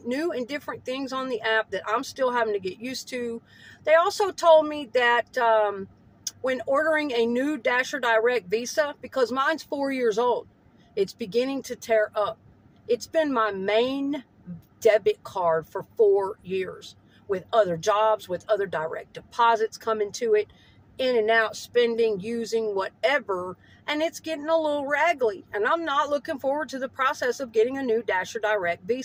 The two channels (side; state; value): both; identical; correlation 1.00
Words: new and different things on the app that I'm still having to get used to. They also told me that when ordering a new Dasher Direct Visa, because mine's 4 years old, it's beginning to tear up. It's been my main debit card for 4 years. With other jobs, with other direct deposits coming to it, in and out, spending, using, whatever, and it's getting a little raggedy. And I'm not looking forward to the process of getting a new Dasher Direct